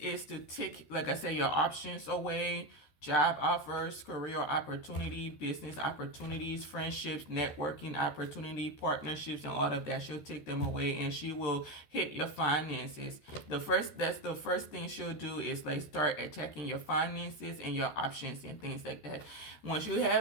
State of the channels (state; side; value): late; right; 13 ms